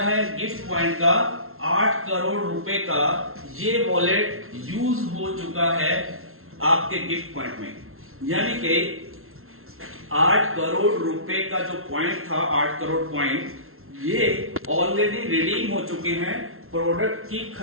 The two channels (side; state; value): left; late; 0.62 ms